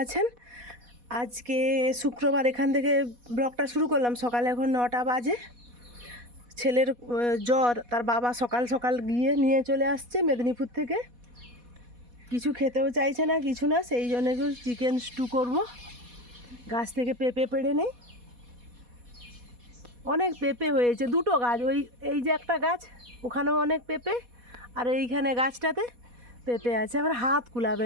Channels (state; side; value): late; left; 4.1 ms